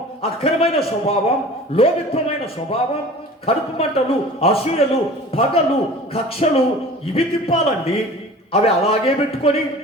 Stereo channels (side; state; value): both; normal; correlation 0.42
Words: అక్రమైన స్వభావం, లోభిత్వమైన స్వభావం, కడుపు మంటలు, అసూయలు, పగలు, కక్షలు ఇవి తిప్పాలండి. అవి అలాగే